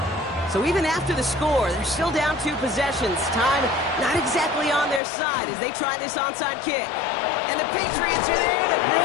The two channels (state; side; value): drops out; right; at 5.0 s